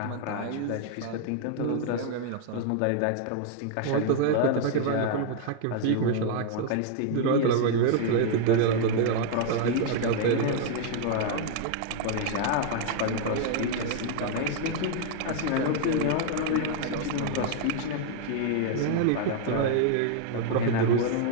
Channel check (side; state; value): both; different; correlation 0.00